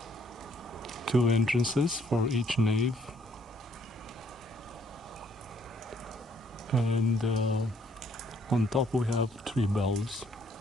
2 entrances for each nave, and on top we have 3 bells.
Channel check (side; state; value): both; normal; correlation 0.66